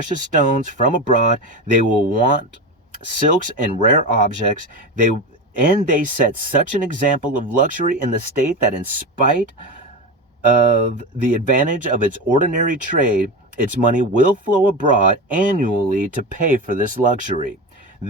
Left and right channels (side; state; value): both; normal; correlation 0.22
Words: stones from abroad. They will want silks and rare objects. They set such an example of luxury in the state that in spite of the advantage of its ordinary trade, its money will flow abroad annually to pay for this luxury.